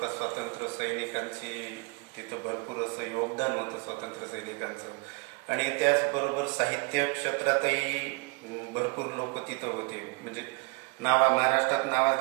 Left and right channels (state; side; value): quieter; left; 31.6 dB